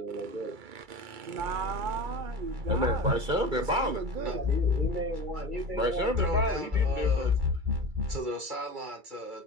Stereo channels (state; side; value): late; left; 2.3 ms